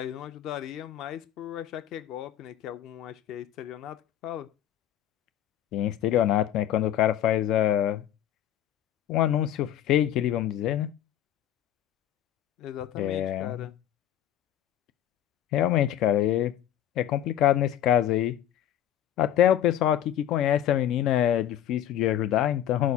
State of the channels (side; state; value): right; quieter; 11.3 dB